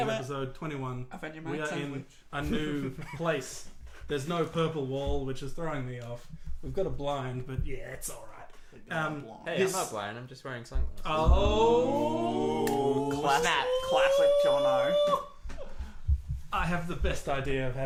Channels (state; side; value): identical; both; correlation 1.00